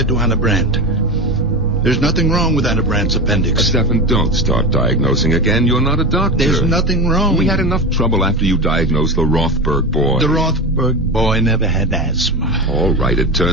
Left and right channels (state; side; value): normal; both; correlation 0.21